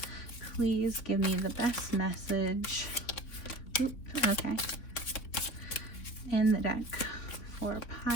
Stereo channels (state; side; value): late; right; 3.9 ms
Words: Please give me the best message. Oops, okay. In the deck for